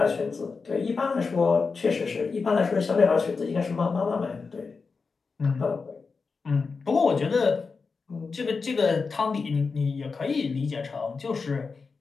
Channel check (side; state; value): right; quieter; 4.7 dB